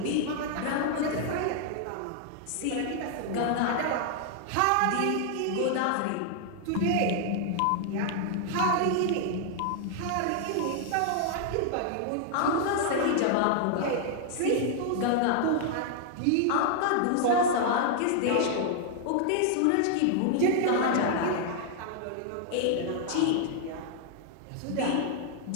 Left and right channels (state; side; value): different; both; correlation 0.00